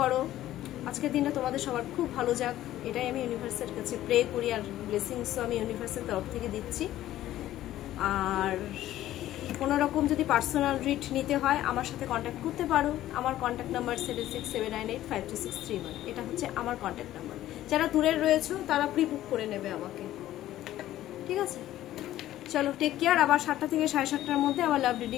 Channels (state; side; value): quieter; right; 13.8 dB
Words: আজকের দিনটা তোমাদের সবার খুব ভালো যাক, এটাই আমি ইউনিভার্সের কাছে প্রে করি, আর ব্লেসিংসও আমি ইউনিভার্সের তরফ থেকে দিচ্ছি। আর কোনো রকম যদি পার্সোনাল রিড নিতে হয় আমার সাথে কন্ট্যাক্ট করতে পারো। আমার কন্ট্যাক্ট নাম্বার 7679852631, এটা হচ্ছে আমার কন্ট্যাক্ট নাম্বার। যারা দূরের রয়েছে তারা প্রি বুক করে নেবে আমাকে, ঠিক আছে? চলো, টেক কেয়ার। আবার 7টা থেকে 7:30টার মধ্যে আবার লাভ